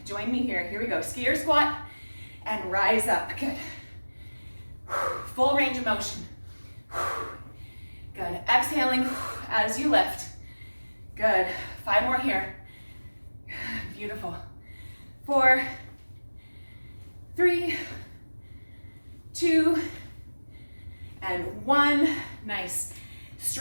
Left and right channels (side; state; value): both; inverted; correlation -1.00